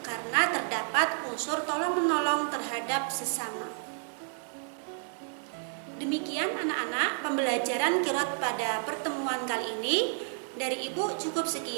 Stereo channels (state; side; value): silent; left; 57 dB below the other